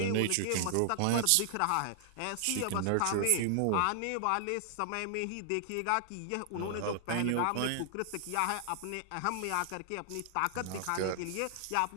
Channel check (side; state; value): both; different; correlation 0.00